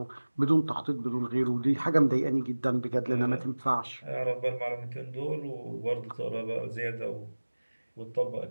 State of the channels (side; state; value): both; inverted; correlation -1.00